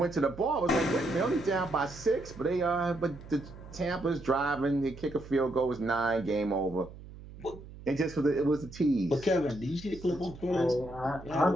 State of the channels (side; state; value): right; noise; hum, 16 dB below the sound